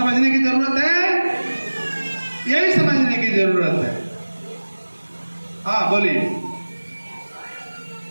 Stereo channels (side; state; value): both; inverted; correlation -1.00